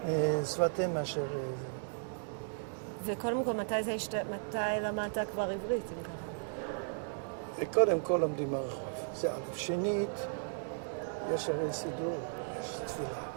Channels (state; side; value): silent; left; digital silence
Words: שפת אם מאשר זה. וקודם כל, מתי למדת כבר עברית, אם ככה? קודם כל לומדים ברחוב, זה א'. שנית, יש הרי סידור, יש תפילה.